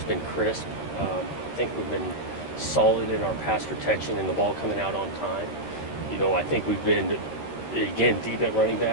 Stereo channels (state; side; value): late; right; 13 ms